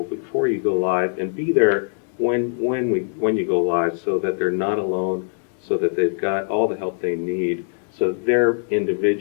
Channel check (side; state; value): right; silent; digital silence